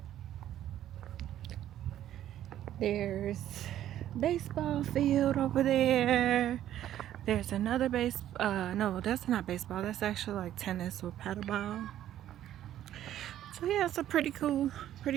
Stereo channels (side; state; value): left; quieter; 12.0 dB